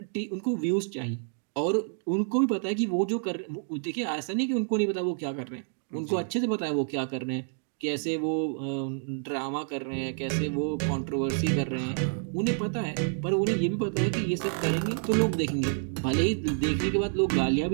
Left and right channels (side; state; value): left; silent; digital silence